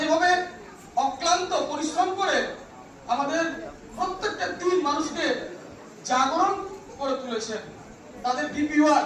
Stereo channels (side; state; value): both; identical; correlation 1.00